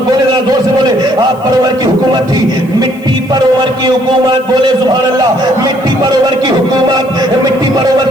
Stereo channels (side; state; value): left; noise; hiss, 27 dB below the sound